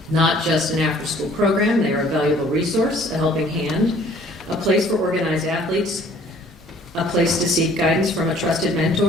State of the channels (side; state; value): both; normal; correlation 0.56